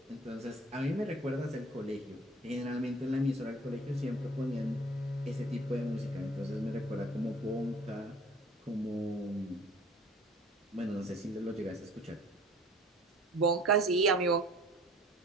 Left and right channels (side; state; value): both; normal; correlation 0.50